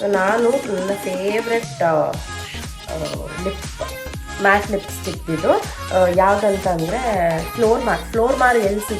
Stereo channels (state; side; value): identical; both; correlation 1.00